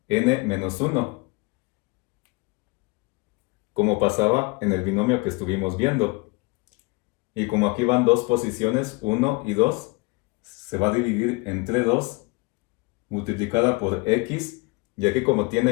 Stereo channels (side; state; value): right; quieter; 26.2 dB